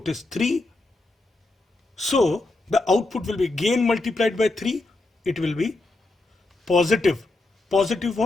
is 3. So the output will be gain multiplied by 3. It will be positive. Positive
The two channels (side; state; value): right; quieter; 3.0 dB